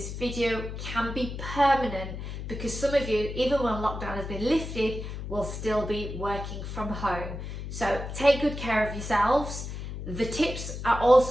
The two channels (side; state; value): left; noise; hum, 7 dB below the sound